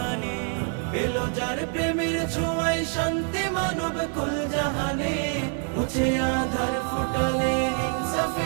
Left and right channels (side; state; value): left; quieter; 38.5 dB